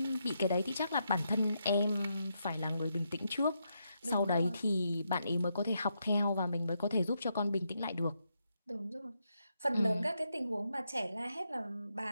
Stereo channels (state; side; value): inverted; both; correlation -0.81